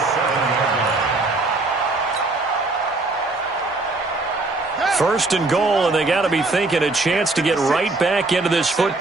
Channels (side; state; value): left; quieter; 3.2 dB